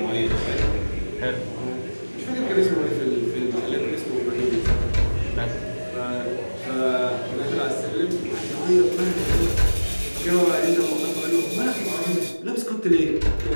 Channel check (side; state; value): both; inverted; correlation -1.00